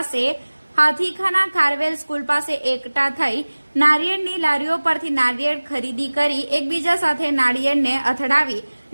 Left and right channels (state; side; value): inverted; both; correlation -1.00